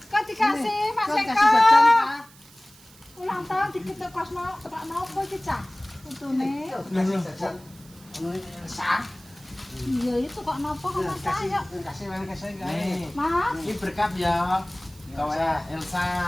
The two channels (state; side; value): noise; right; hiss, 24 dB below the sound